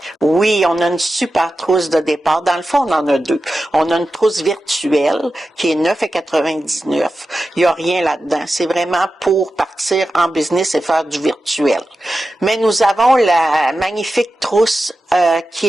Oui, on a une super trousse de départ. Dans le fond, on en a 2. On a une trousse virtuelle qui est 9,99. Il n'y a rien là-dedans. C'est vraiment pour partir en business et faire du virtuel. Mais nous avons la magnifique trousse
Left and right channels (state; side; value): normal; both; correlation 0.92